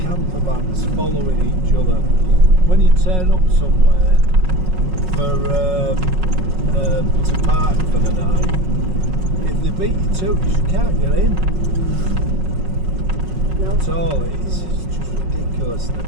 camper vans following each other. When you turn up somewhere to park for the night, if they beat you to it, you can't get in. No. At all. It's just ridiculous.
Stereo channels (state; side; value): late; left; 5.4 ms